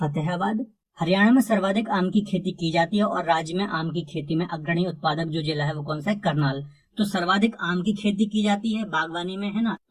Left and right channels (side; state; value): both; identical; correlation 1.00